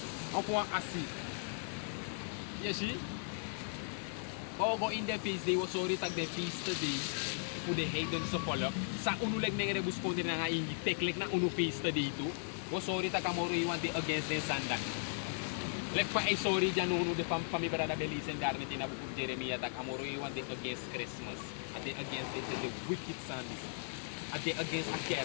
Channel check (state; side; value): silent; right; digital silence